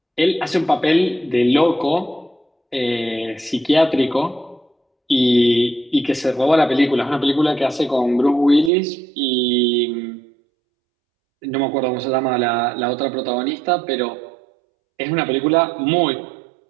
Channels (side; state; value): left; drops out; at 8.7 s